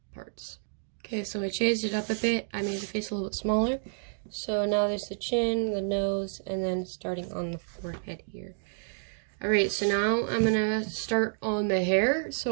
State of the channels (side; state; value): left; silent; digital silence